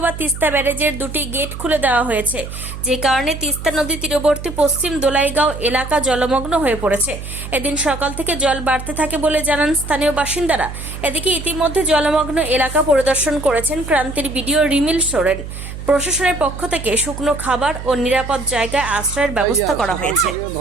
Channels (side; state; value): right; noise; hum, 10 dB below the sound